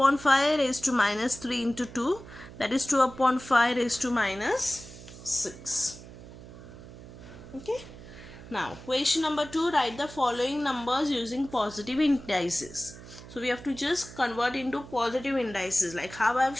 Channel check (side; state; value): right; noise; hum, 16 dB below the sound